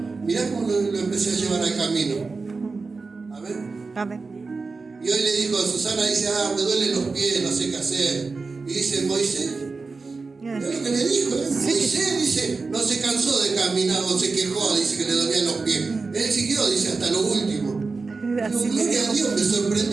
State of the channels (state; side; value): quieter; left; 4.2 dB